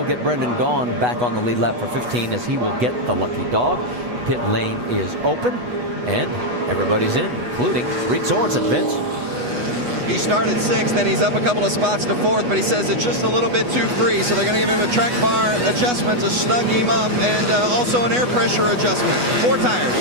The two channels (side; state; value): left; late; 8.2 ms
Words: get Brendan Gaughan back on the lead lap for 15 as he will get the lucky dog. Pit lane is open and everybody's in, including Reed Sorensen. Vince? He started 6th, then he's up a couple of spots to 4th, but he says it's just a little bit too free, so they're going to give him a track bar adjustment to snug him up, and also an air pressure adjustment. 4